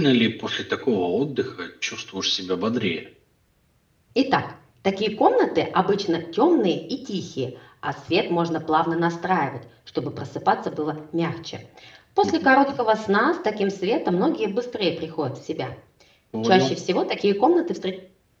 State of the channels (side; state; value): both; identical; correlation 1.00